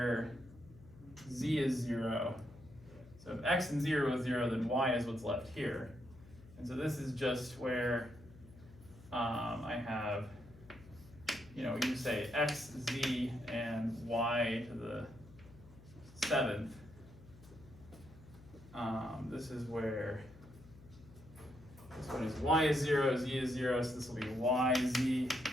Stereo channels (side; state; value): left; noise; hum, 21 dB below the sound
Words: z is 0. So if x and 0 is 0, then y is what's left here. And so this is just where I have, you say x, z, and y to the 7th. This is where this one is y is 0, z is 0, so this will be y, z,